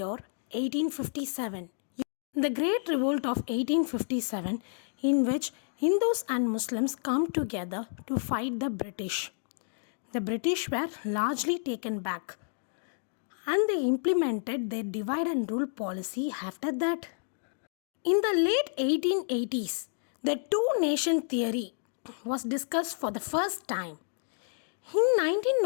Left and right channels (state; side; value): silent; right; digital silence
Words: year 1857. The Great Revolt of 1857, in which Hindus and Muslims come together to fight the British. The British were largely taken back and they implemented their divide and rule policy after that. In the late 1880s, the two-nation theory was discussed for the first time. In